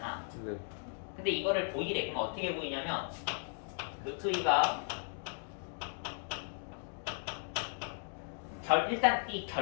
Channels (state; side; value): silent; right; 54 dB below the other